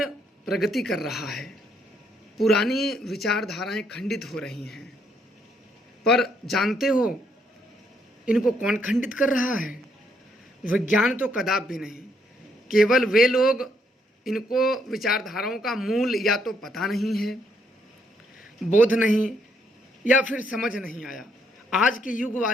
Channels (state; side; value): normal; both; correlation 0.72